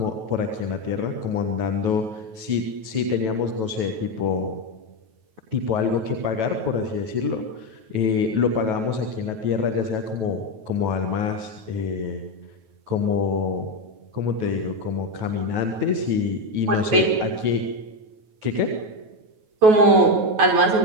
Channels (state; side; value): late; left; 9.3 ms